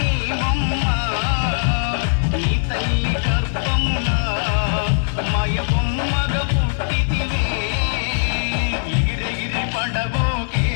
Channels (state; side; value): silent; right; digital silence